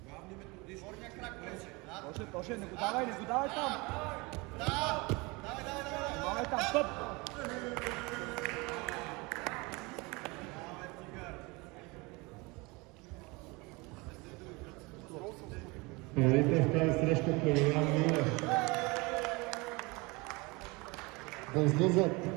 Главни методиш. Горния крак влезе. Тоше, не го давай там. Давай там, стоп. Победител в тази среща Павел Милев. Да излизат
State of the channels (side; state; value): left; quieter; 25.7 dB